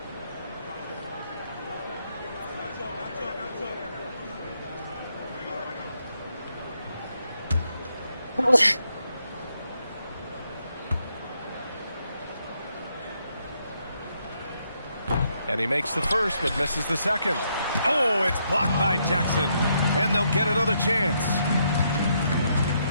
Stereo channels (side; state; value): both; inverted; correlation -0.77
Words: And he makes the first, but misses the second. Oh, it's blocked by Jackson. And they'll get another chance.